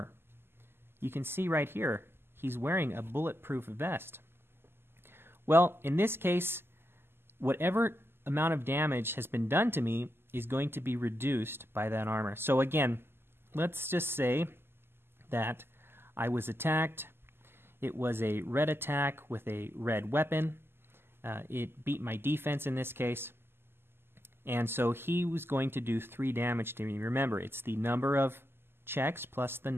You can see right here, he's wearing a bulletproof vest. Well, in this case, whatever amount of damage has been done to me is going to be reduced by that armor. So again, let's just say that I was attacked. It was a red attack with a red weapon. It beat my defense in this case. And so he was going to do 3 damage to me. Remember, it's the number of checks plus the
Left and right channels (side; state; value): left; late; 0.11 ms